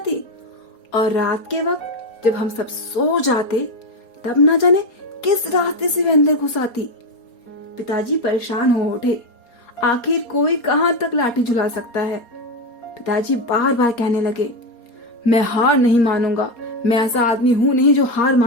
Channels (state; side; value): late; right; 4.3 ms